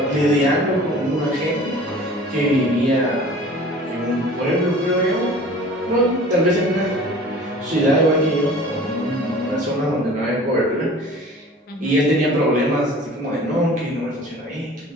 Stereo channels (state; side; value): normal; both; correlation 0.44